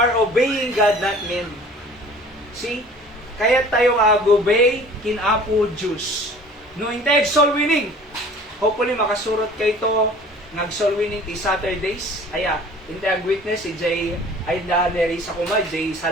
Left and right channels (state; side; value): normal; both; correlation 0.47